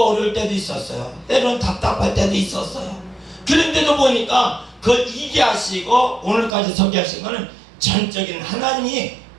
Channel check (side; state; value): left; drops out; at 6.5 s